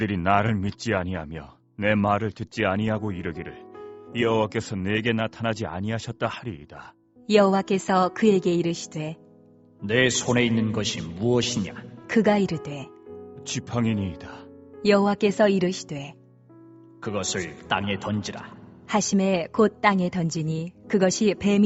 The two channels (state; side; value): identical; both; correlation 1.00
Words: 나를 믿지 아니하며 내 말을 듣지 아니하고 이르기를 여호와께서 내게 나타나지 아니하셨다 하리이다. 여호와께서 그에게 이르시되 내 손에 있는 것이 무엇이냐? 그가 이르되 지팡이니이다. 여호와께서 이르시되 그것을 땅에 던지라. 하심에 곧 땅에 던지니 그것이